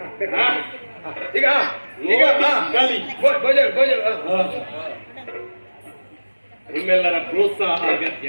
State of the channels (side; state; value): both; inverted; correlation -1.00